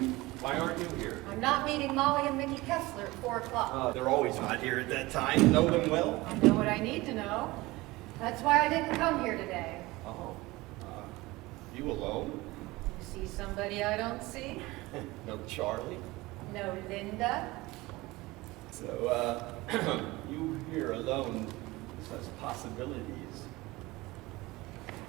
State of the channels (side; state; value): left; quieter; 20.7 dB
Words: Why aren't you here? I'm not meeting Molly and Mickey Kessler at 4 o'clock. They're always not here at that time. Know them well? I know what I need to know. That's why I didn't come here today. Oh. You alone? You see somebody I don't see? No Charlie? No Linda? So, you here alone says possibilities.